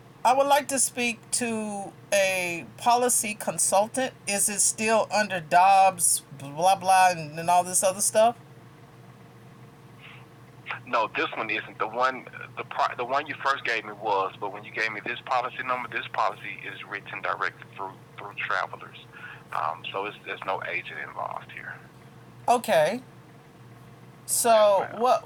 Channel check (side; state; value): both; identical; correlation 1.00